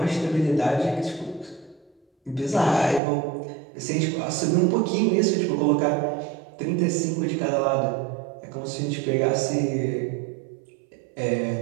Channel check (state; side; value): drops out; left; at 3.0 s